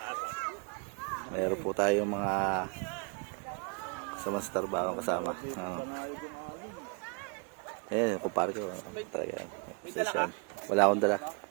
Meron po tayong mga kasama sa trabaho kasama. Ayan, kumpare ko. Talaga yan. Wala akong dala.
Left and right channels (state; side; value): quieter; left; 35.4 dB